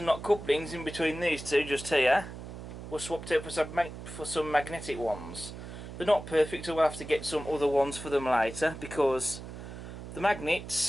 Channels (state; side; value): noise; right; hum, 11 dB below the sound